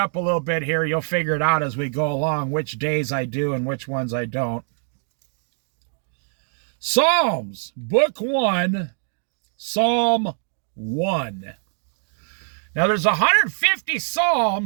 a little bit here. You'll figure it out as we go along, which days I do and which ones I don't. Psalms, Book 1, Psalm 1. Now there's 150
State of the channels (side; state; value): left; silent; 63 dB below the other